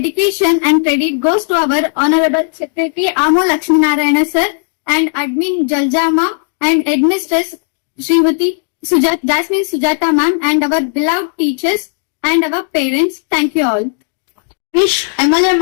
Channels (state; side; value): silent; right; digital silence